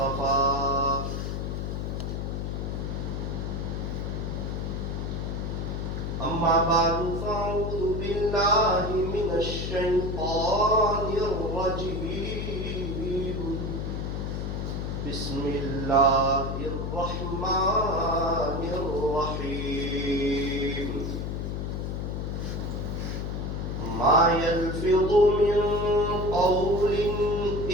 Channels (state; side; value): noise; left; hum, 3 dB below the sound